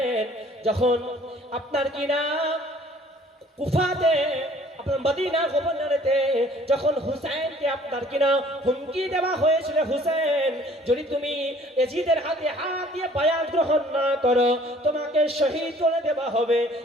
যখন আপনার কিনা কুফাতে আপনার মদিনা গভর্নরেতে যখন হুসাইনকে আপনার কিনা হুমকি দেওয়া হয়েছিল হুসাইন যদি তুমি এজিদের হাতে হাত দিয়ে বায়াত গ্রহণ না করো তোমাকে শহীদ করে দেওয়া হবে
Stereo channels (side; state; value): both; normal; correlation 0.55